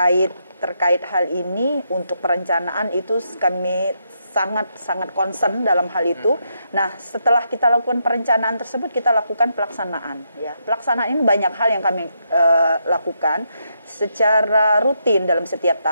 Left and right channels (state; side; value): inverted; both; correlation -0.79